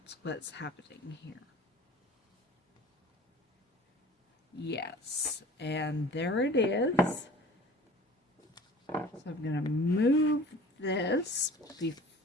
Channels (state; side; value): normal; both; correlation 0.44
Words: what's happening here. Yes, and there it is. So I'm going to move this